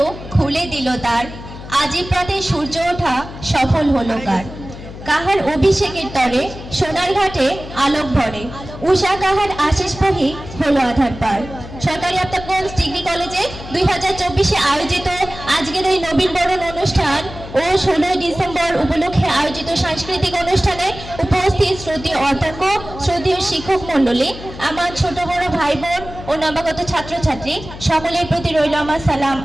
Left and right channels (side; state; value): left; noise; hum, 13 dB below the sound